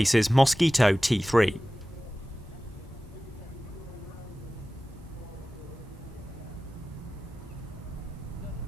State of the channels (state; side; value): normal; both; correlation 0.96